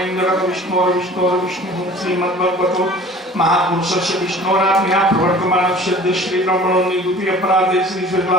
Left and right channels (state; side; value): normal; both; correlation 0.46